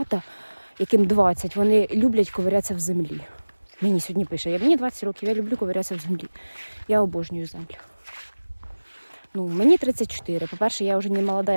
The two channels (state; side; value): inverted; both; correlation -1.00